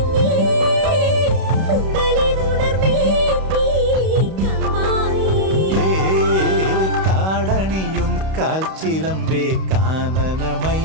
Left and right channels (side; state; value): left; late; 31 ms